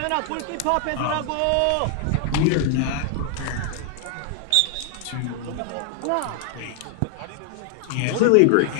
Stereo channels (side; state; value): both; different; correlation 0.00